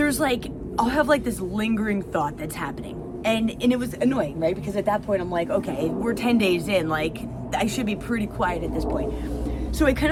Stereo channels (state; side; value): identical; both; correlation 1.00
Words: like, I'll have like this lingering thought that's happening. And it was annoying, right? Because at that point I'm like, okay, we're 10 days in, like I should be pretty quiet at this point. So I kind